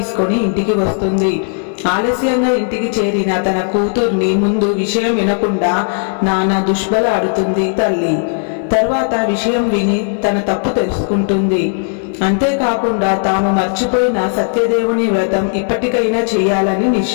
ఇంటికి వస్తుంది. ఆలస్యంగా ఇంటికి చేరిన తన కూతుర్ని ముందు విషయం వినకుండా నానా దుష్బలాడుతుంది తల్లి. తర్వాత విషయం విని తన తప్పు తెలుసుకుంటుంది. అంతేకాకుండా తాము మర్చిపోయిన సత్యదేవుని వ్రతం ఇప్పటికైనా చేయాలని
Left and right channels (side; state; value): right; silent; 60 dB below the other